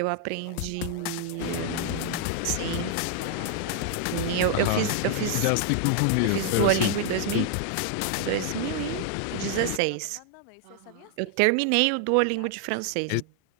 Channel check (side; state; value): both; different; correlation 0.00